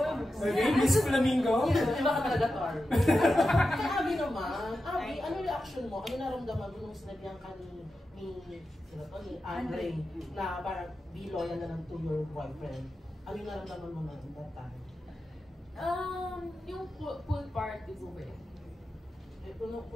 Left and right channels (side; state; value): both; normal; correlation 0.91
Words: Miss Flamingo? Iba ka talaga, Tor. Kay Abby naman, Abby, ano reaction mo? Ano naramdaman mo nung sinabihan ka ni Andre na parang be loyal na lang to your boyfriend? Ano yung naramdaman mo na that time? Yung pool party po eh.